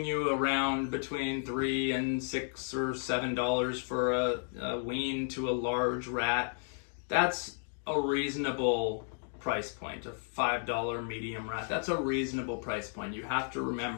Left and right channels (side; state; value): right; silent; 56 dB below the other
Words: you around between $3 and $6 or $7 for a wean to a large rat, that's a reasonable price point. A $5 medium rat, that's a reasonable price point. You have to